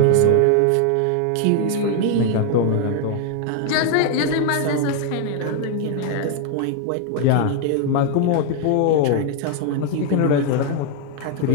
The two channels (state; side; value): different; both; correlation 0.00